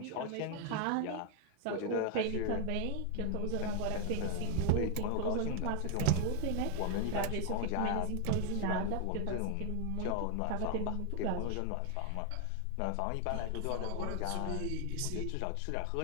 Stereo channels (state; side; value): different; both; correlation 0.00